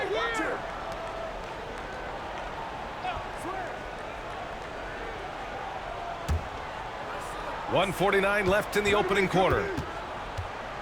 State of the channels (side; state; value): both; identical; correlation 1.00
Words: .149 left in the opening quarter.